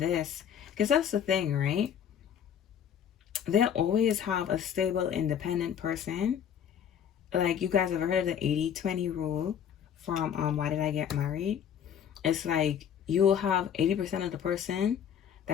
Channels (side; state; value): right; quieter; 8.7 dB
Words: because that's the thing, right? They'll always have a stable, independent person. Like, you guys have heard of the 80-20 rule from Why Did I Get Married? It's like you'll have 80% of the person